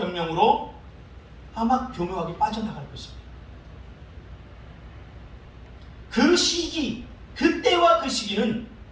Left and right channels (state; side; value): identical; both; correlation 1.00